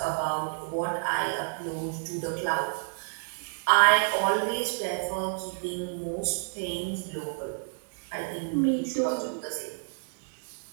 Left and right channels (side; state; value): left; silent; digital silence